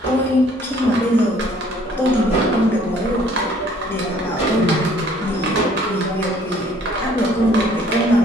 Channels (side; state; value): both; normal; correlation 0.58